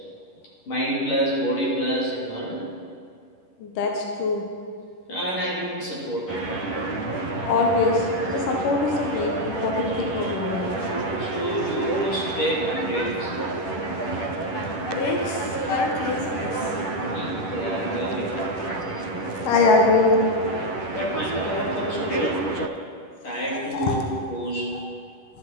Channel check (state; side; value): late; right; 10 ms